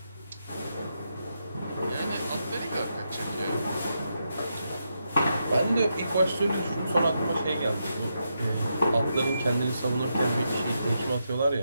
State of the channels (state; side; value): inverted; both; correlation -0.83